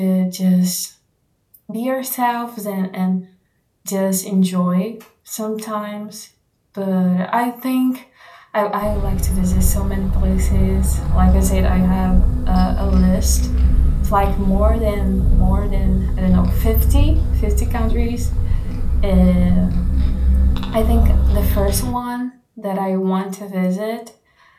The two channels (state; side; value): identical; both; correlation 1.00